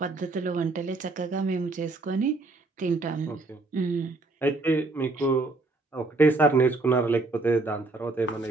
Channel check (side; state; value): left; quieter; 3.3 dB